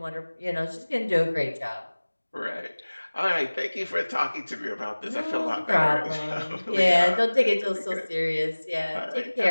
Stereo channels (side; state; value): both; inverted; correlation -1.00